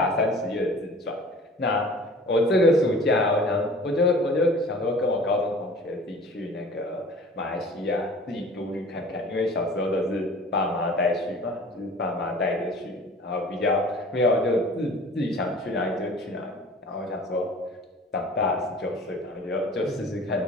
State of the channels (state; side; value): normal; both; correlation 0.45